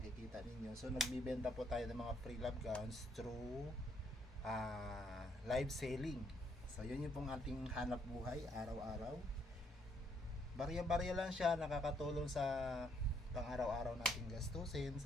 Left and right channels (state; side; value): normal; both; correlation 0.70